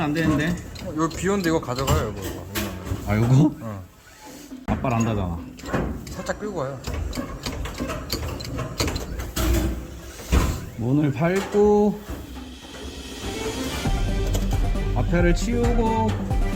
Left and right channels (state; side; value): identical; both; correlation 1.00